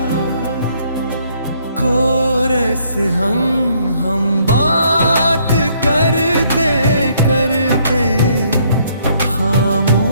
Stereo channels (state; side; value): inverted; both; correlation -0.68